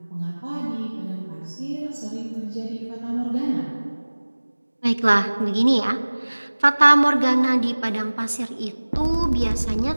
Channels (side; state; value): both; inverted; correlation -1.00